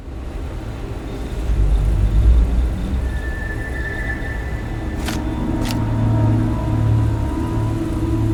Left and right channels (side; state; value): both; identical; correlation 1.00